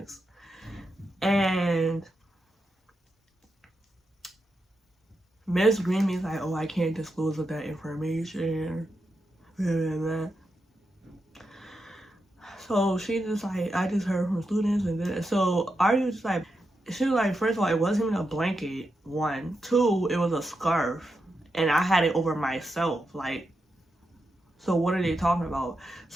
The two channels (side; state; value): both; normal; correlation 0.86